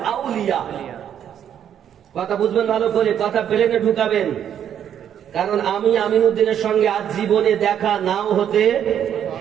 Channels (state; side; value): quieter; left; 9.4 dB